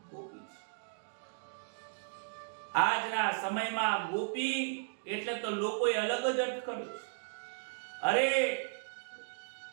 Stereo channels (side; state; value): left; silent; digital silence